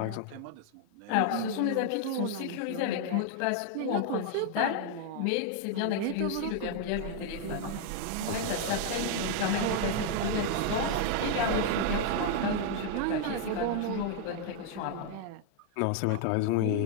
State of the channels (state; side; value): different; both; correlation 0.00